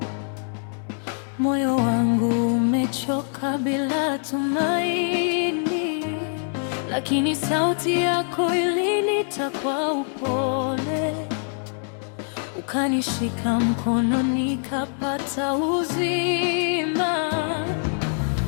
moyo wangu umechoka bila tumaini, lakini sauti yako ilinita kwa upole, ukanishika mkono nikapata uzima.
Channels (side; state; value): right; silent; 58 dB below the other